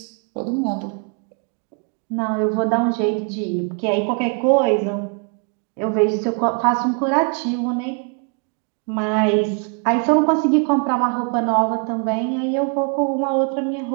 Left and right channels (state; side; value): quieter; left; 39.3 dB